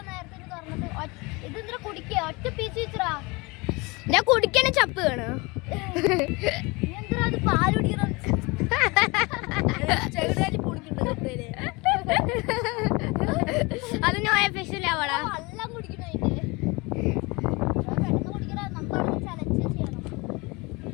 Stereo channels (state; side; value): quieter; right; 25.8 dB